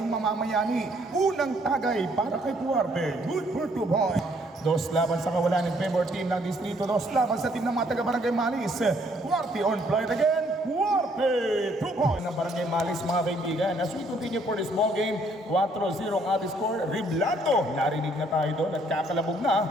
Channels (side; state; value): both; normal; correlation 0.66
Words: mamamayani? Unang tagay para kay Duarte, good for 2 points. Dos laban sa kawalan ng favor team ng Distrito, dos laban sa team ng mga taga-barangay Malis. Duarte on flight again, Duarte, 2 points ng barangay Malis mga kaibigan. As we continue for this ball game, 4-0 ang ating score. Riblando, narinig na tayo doon at kakalabog